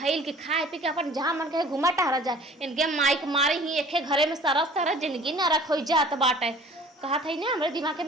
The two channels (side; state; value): both; normal; correlation 0.49